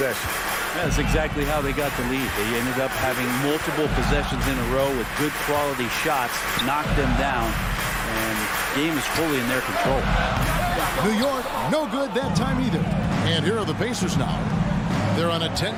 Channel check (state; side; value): identical; both; correlation 1.00